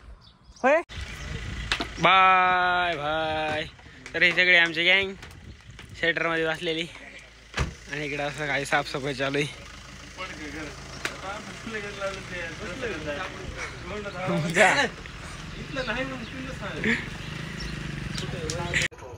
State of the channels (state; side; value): identical; both; correlation 1.00